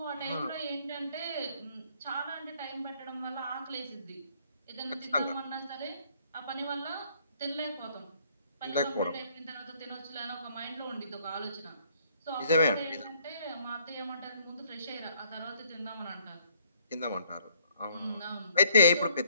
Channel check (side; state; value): both; inverted; correlation -0.63